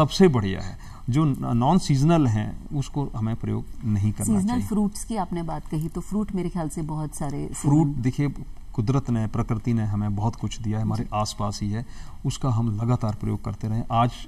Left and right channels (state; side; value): identical; both; correlation 1.00